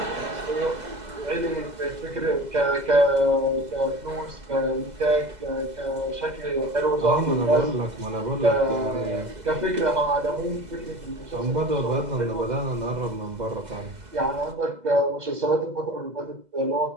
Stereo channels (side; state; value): left; late; 2.0 ms